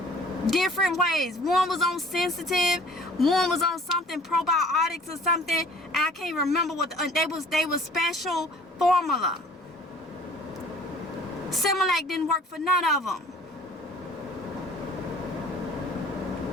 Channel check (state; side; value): normal; both; correlation 0.51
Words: Different ways. One was on sensitive. One was on something probiotics or something. And I can't remember what they was special formula. Similac didn't work for none of them.